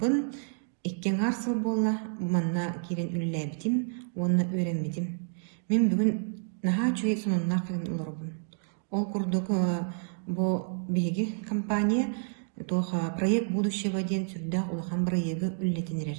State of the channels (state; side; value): silent; left; digital silence